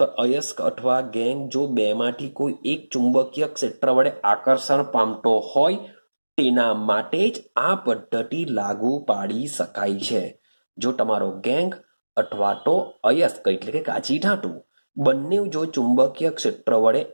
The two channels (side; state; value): both; inverted; correlation -1.00